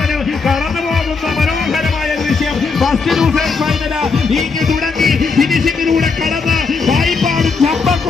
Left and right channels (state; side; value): quieter; right; 4.7 dB